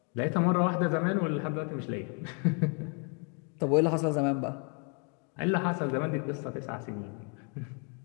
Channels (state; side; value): quieter; right; 37.7 dB